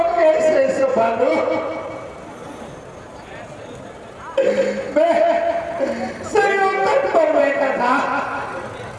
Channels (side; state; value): both; identical; correlation 1.00